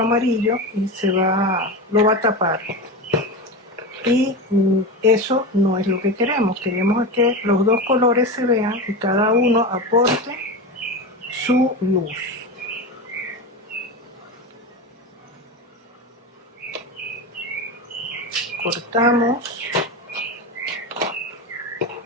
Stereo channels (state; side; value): normal; both; correlation 0.22